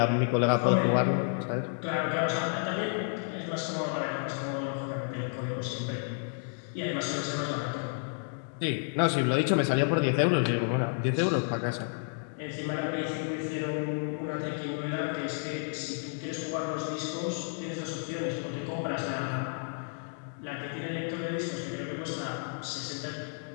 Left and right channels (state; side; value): silent; right; 57 dB below the other